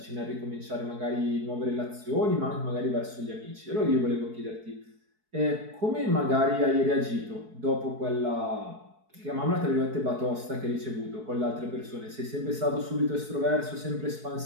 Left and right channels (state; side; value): late; left; 4.6 ms